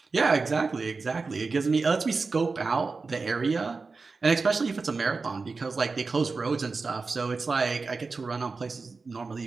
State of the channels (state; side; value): quieter; left; 4.2 dB